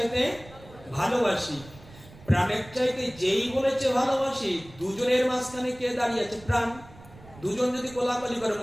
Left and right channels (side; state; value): right; noise; rumble, 21 dB below the sound